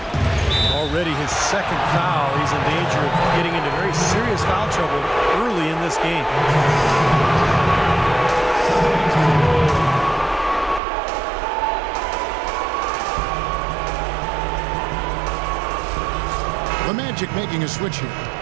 Already his second foul. He's in danger of getting into very serious foul trouble early in this game. The Magic making a switch here.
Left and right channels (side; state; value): left; drops out; at 10.8 s